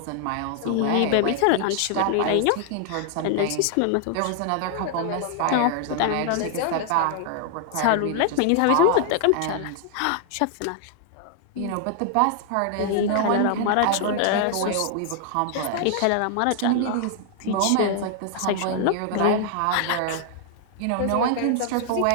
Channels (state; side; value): different; both; correlation 0.00